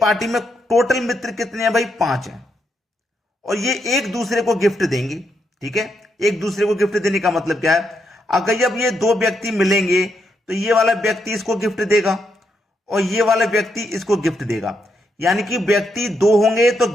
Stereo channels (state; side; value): normal; both; correlation 0.80